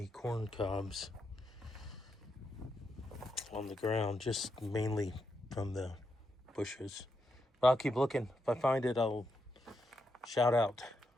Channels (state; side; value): normal; both; correlation 0.83